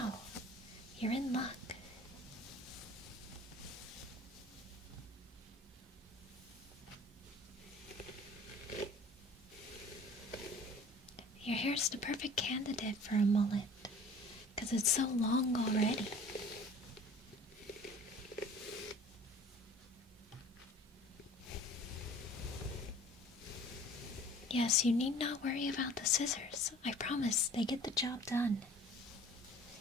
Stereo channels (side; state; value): both; normal; correlation 0.48